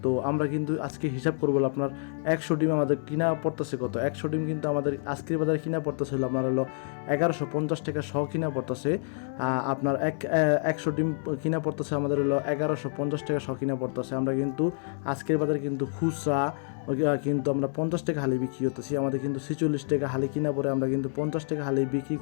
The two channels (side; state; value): right; silent; 59 dB below the other